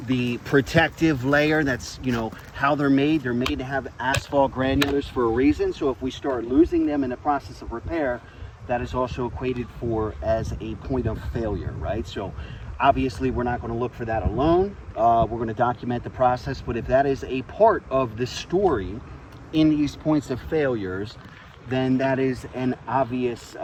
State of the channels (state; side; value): identical; both; correlation 1.00